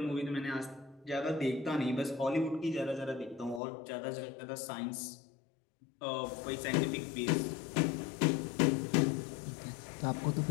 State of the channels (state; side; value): drops out; right; at 3.6 s